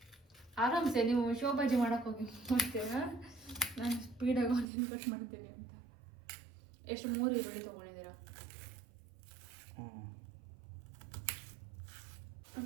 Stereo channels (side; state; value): left; drops out; at 4.7 s